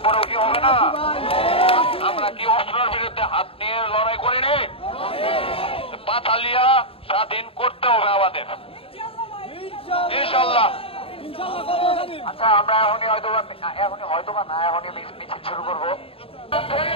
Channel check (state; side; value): late; right; 0.27 ms